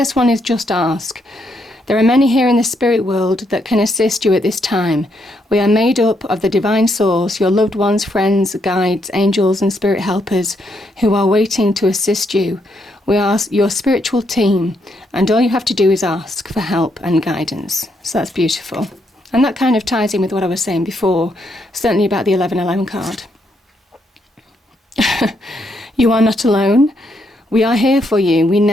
one is just ask. There are many here in the spirit world that can assist you at this time. We are made up of the divine source, your loved ones, friends, guides, angels and spirit helpers who are waiting to assist you. We are your spiritual team, and all you have to do is ask for help and guidance. So that's beautiful. And that kind of ties in with what I was saying before, certainly about the 1111 card. You are not alone. We are here for you. We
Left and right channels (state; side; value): normal; both; correlation 0.77